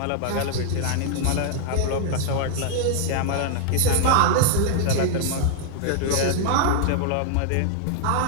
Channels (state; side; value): different; both; correlation -0.01